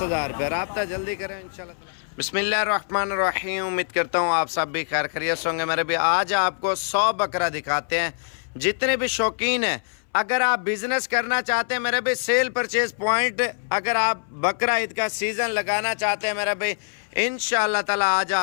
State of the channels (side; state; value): right; silent; 61 dB below the other